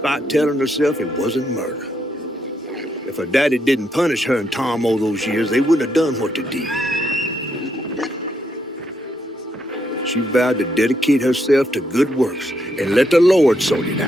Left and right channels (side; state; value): both; normal; correlation 0.78